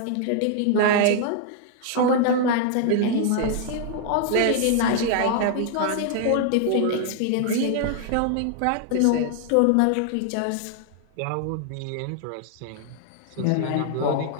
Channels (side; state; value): both; different; correlation 0.00